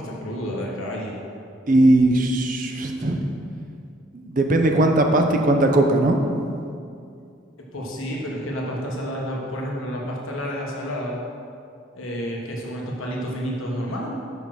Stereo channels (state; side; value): normal; both; correlation 0.63